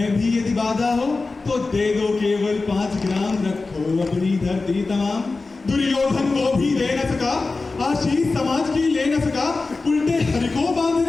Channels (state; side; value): quieter; right; 3.7 dB